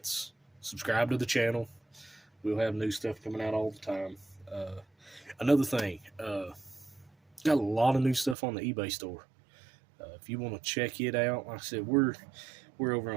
subscribe to the channel. We'll have new stuff coming out all the time. Another thing, got a lot of new stuff on the eBay store. If you want to check it out, like I said, we're over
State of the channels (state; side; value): drops out; left; at 8.3 s